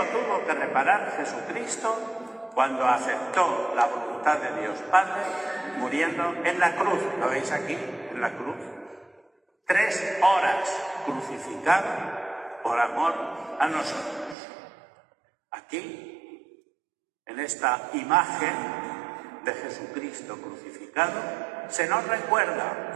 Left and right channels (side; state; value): left; drops out; at 14.4 s